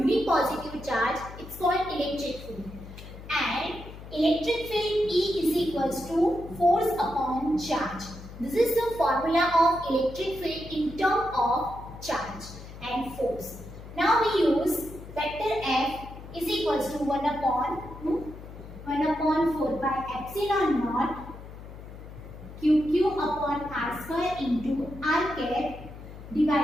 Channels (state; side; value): noise; left; hum, 14 dB below the sound